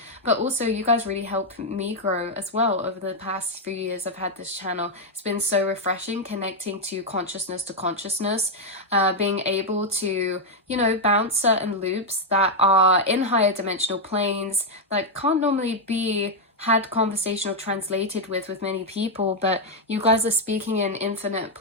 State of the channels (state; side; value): normal; both; correlation 0.00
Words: But also you guys really help me grow as well over the past few years I've had this channel. It's been so refreshing connecting to consciousness, being able to, you know, bounce certain loops that are in higher dimensional planes that can't normally be had conversation or translated with many people, but you guys are speaking in infinite